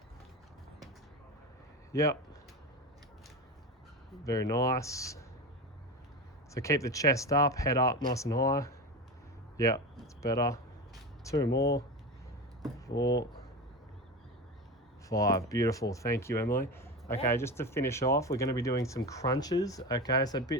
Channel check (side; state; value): both; normal; correlation 0.24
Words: Yep. Very nice. So keep the chest up, head up, nice and high. Yep, it's better. 2 more. 4, 5. Beautiful. Thank you, Emily. Okay, Yeah. just to finish off, we're going to be doing some crunches. Okay, so a